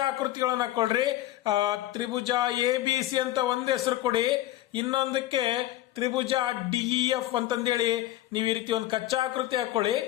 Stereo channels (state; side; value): quieter; right; 14.9 dB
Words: ಆಕೃತಿಗಳನ್ನ ಹಾಕೊಳ್ರಿ. ತ್ರಿಭುಜ ಎ ಬಿ ಸಿ ಅಂತ ಒಂದು ಹೆಸರು ಕೊಡಿ, ಇನ್ನೊಂದಕ್ಕೆ ತ್ರಿಭುಜ ಡಿಇಎಫ್ ಅಂತಂದೇಳಿ ನೀವು ಈ ರೀತಿ ಒಂದು ಕಚ್ಚಾ ಆಕೃತಿ ಹಾಕೊಳ್ಳಿ.